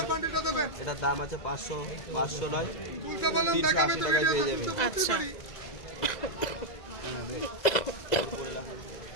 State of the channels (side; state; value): right; late; 2.0 ms